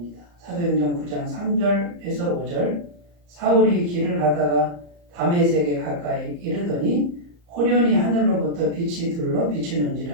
사도행전 9장 3절에서 5절 사울이 길을 가다가 다메섹에 가까이 이르더니 호련히 하늘로부터 빛이 둘러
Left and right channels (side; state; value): left; late; 34 ms